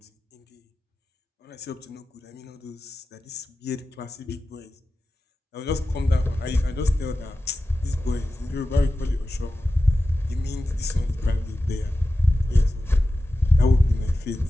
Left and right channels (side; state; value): both; normal; correlation 0.93